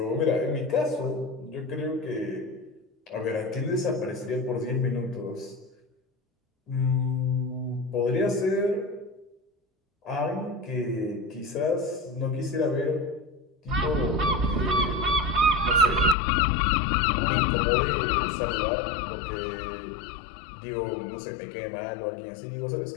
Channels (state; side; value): drops out; right; at 16.2 s